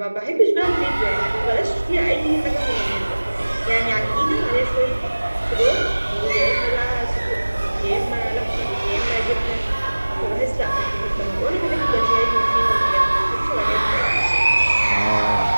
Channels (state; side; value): inverted; both; correlation -1.00